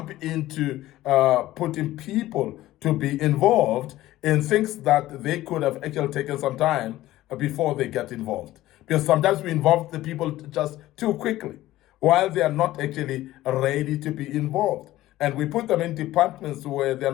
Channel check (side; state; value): right; quieter; 15.6 dB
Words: into putting people to be involved in things that they could have actually taken some time before they get involved. Because sometimes we involve the people just too quickly, while they are not actually ready to be involved. And we put them in departments where they're